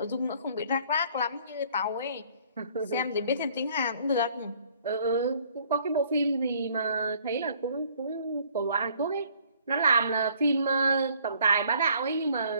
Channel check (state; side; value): inverted; both; correlation -0.60